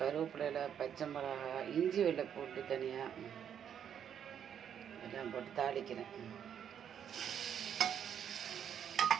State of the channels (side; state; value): left; quieter; 8.7 dB